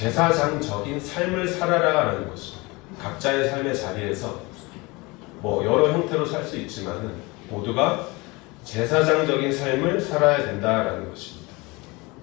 삶을 살아라라는 것입니다. 각자의 삶의 자리에서 뭐 여러 형태로 살 수 있지만은 모두가 제사장적인 삶을 살아야 된다라는 것입니다.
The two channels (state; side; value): quieter; right; 24.7 dB